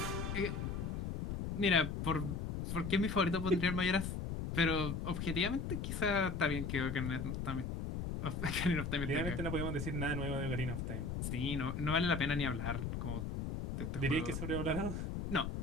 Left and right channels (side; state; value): left; noise; rumble, 3 dB below the sound